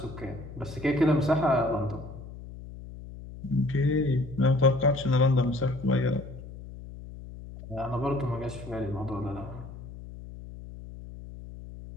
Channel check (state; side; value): noise; left; hum, 14 dB below the sound